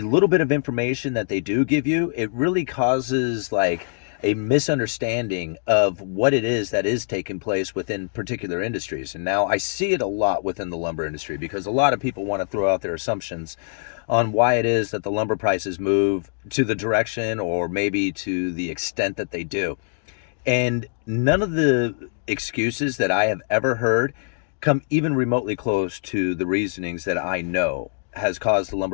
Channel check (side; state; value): right; silent; 63 dB below the other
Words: little bit of information that they do give you, it really causes like a misunderstanding of what it is that is taking place within particular industries. And now I see it a lot within the lumber industry because a lot of people want to throw out their assumptions on why it is that the lumber prices move to the direction or maybe to the extent that they do. And none of the excuses that I have ever heard come even remotely close to the reasonings that I know has caused the